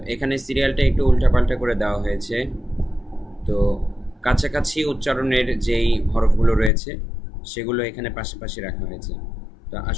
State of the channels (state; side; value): drops out; right; at 6.7 s